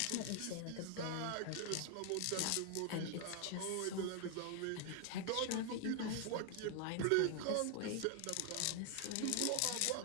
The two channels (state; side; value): different; both; correlation 0.00